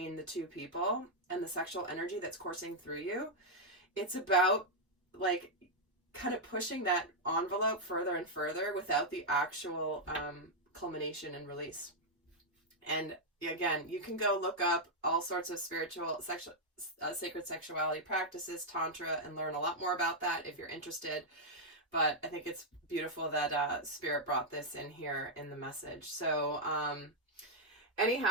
the two people and the sexual energy that's coursing through you. It's about like kind of pushing that envelope further and further without the actual culmination and release. And again, you can go look up all sorts of sacred sexuality practices, tantra, and learn a lot more about that if you're interested. But I think it's beautiful that Spirit brought this in here in the message. So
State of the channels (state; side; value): normal; both; correlation -0.03